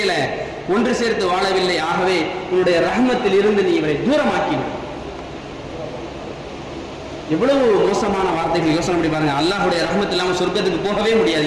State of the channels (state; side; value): identical; both; correlation 1.00